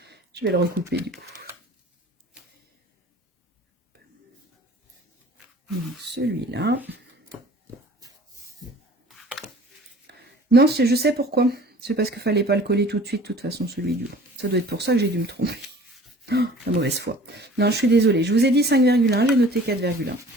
vais le recouper du coup. Celui-là. Non, je sais pourquoi. C'est parce qu'il ne fallait pas le coller tout de suite, de toute façon, celui du haut. Ça doit être pour ça que j'ai dû me tromper. Oh, la mauvaise foi. Non, je suis désolée. Je vous ai dit 5,1, j'ai noté 4,1.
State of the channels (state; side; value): normal; both; correlation 0.48